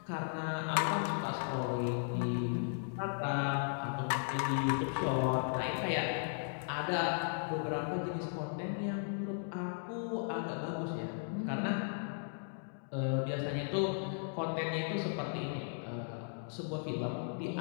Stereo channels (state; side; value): silent; right; digital silence